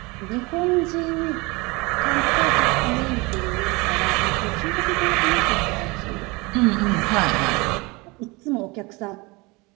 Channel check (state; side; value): quieter; left; 25.3 dB